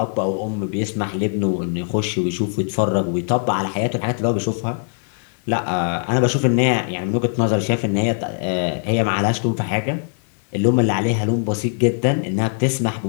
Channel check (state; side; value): silent; right; 65 dB below the other